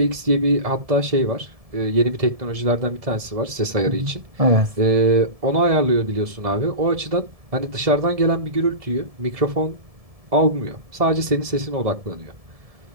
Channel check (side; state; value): left; late; 1.7 ms